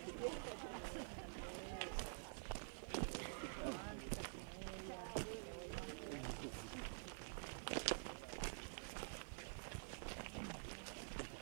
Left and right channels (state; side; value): silent; left; digital silence